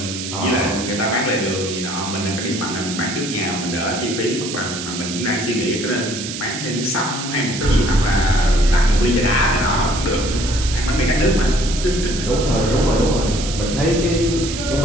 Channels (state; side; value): noise; right; hiss, 7 dB below the sound